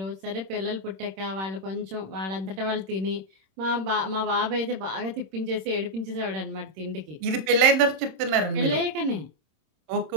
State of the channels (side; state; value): left; late; 27 ms